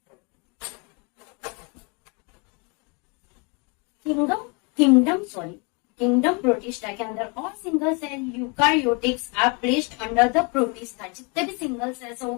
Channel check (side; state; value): right; quieter; 32.2 dB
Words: किंगडम प्रोटिस्टा के अंदर और single cell eukaryotics are placed under the protista. जितने भी सिंगल सेल्स है वो